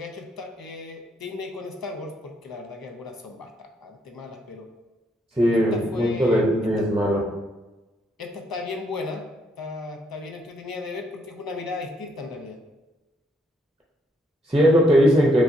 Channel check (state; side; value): normal; both; correlation 0.73